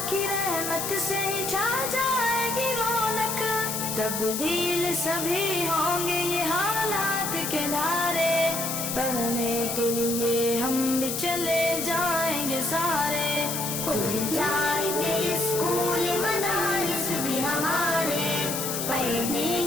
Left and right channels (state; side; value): noise; left; hiss, 3 dB below the sound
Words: کی رحمت سے چھا جائے گی رونق، تبدیل سبھی ہوں گے یہ حالات کے دھارے، پڑھنے کے لیے ہم بھی چلے جائیں گے سارے، کھل جائیں گے اسکول مدارس بھی ہمارے، پڑھنے